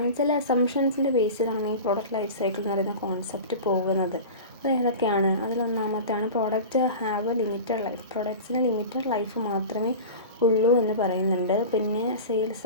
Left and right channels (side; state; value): both; inverted; correlation -0.32